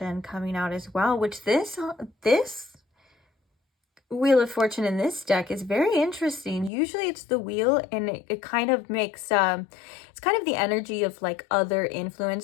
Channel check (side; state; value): right; drops out; at 6.7 s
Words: coming out as well, which this Wheel of Fortune in this deck is very interesting. Usually it's the wheel, and it kind of makes it's kind of the energy of like other